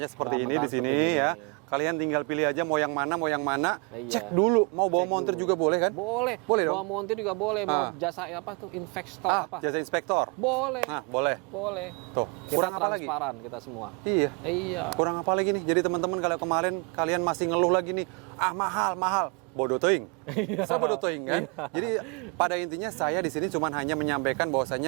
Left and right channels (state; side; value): quieter; left; 33.2 dB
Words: seperti Bahan ini mentah di sini seperti ya. ini. Kalian tinggal pilih aja mau yang mana, Iya. Cek dulu, mau bawa Cek montir dulu. juga boleh kan? Boleh. Boleh dong. Bawa montir juga boleh. Mau jasa apa tuh? Investor apa? Jasa inspektor. Boleh. Nah, boleh. Boleh. Tuh, Kita kurang apa lagi? transparan kita semua. Iya. Iya. Kurang apa lagi nih? Jadi teman-teman kalau kemarin kalian masih ngeluh lagi nih, mahal. Bodoh teuing. Saya bodoh teuing kan. Jadi pada intinya saya di sini cuma hanya menyampaikan